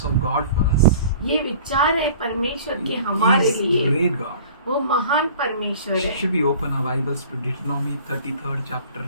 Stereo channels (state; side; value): inverted; both; correlation -0.46